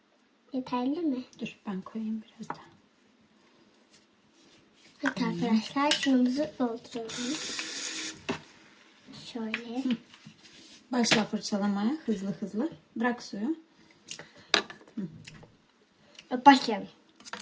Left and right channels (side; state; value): both; identical; correlation 1.00